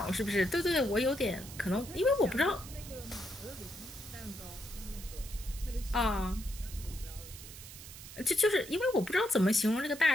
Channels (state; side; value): noise; right; hiss, 14 dB below the sound